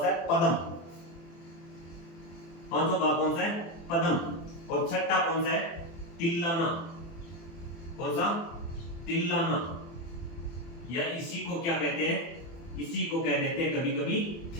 सा है, पदम। पांचवा भाग कौन सा है, पदम। और छठा कौन सा है, तिल्लाना। कौन सा, तिल्लाना, या इसी को क्या कहते हैं, इसी को कह देते हैं कभी कभी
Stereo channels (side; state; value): right; late; 24 ms